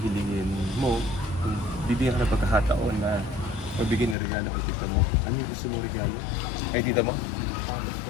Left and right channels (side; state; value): right; drops out; at 4.2 s